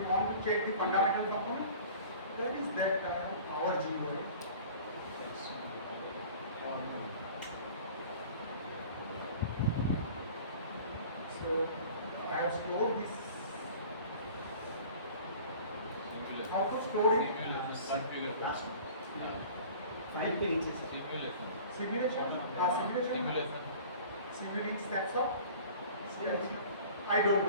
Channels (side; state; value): both; inverted; correlation -0.44